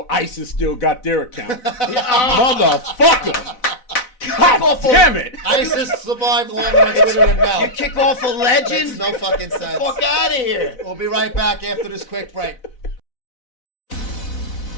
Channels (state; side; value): late; right; 4.0 ms